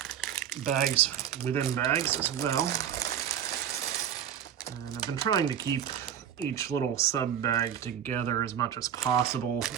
bags within bags as well. And I've been trying to keep each little sub bag together as much as possible.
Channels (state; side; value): quieter; left; 9.3 dB